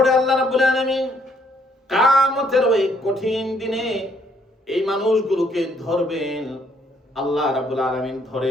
আল্লাহ রাব্বুল আলামিন কিয়ামতের ওই কঠিন দিনে এই মানুষগুলোকে ধরবেন। আল্লাহ রাব্বুল আলামিন ধরে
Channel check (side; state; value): both; normal; correlation 0.68